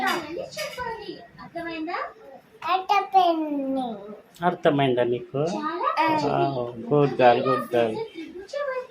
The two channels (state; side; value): identical; both; correlation 1.00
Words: చెప్పాలి. అర్థమైందా? అర్థమైందా నీకు? చాలా గుడ్ గర్ల్, గుడ్ గర్ల్. త్రిభుజ